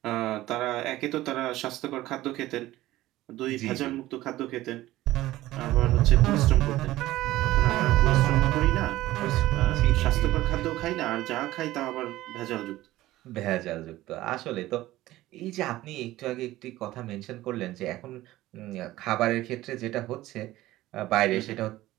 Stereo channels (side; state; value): left; quieter; 16.3 dB